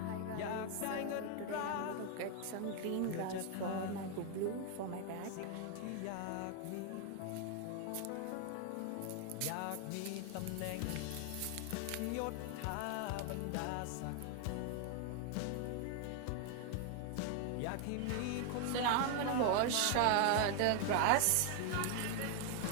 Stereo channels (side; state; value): both; different; correlation 0.00